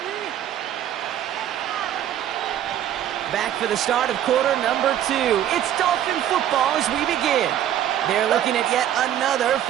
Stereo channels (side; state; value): left; quieter; 11.1 dB